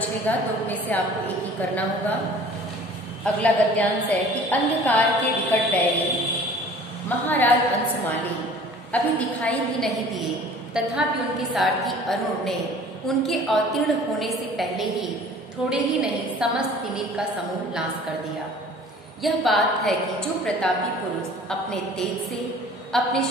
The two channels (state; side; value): normal; both; correlation 0.48